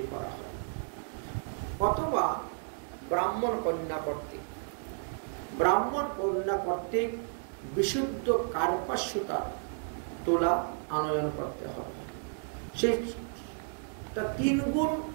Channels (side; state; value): left; silent; 56 dB below the other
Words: করা হয়, অথবা ব্রাহ্মণ কন্যা কর্তৃক বিশুদ্ধ কার্পাস সুতা তোলা আনয়ন করতে হবে। সেটা 3 গুণ